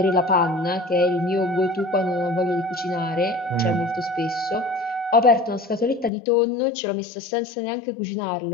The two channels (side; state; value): right; drops out; at 6.1 s